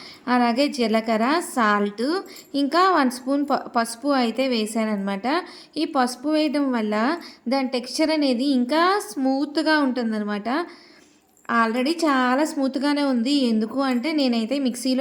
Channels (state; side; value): identical; both; correlation 1.00